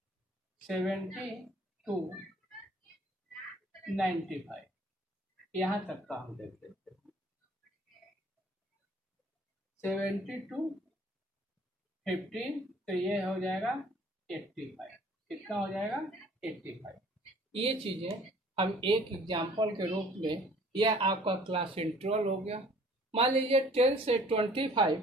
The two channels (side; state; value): both; normal; correlation 0.54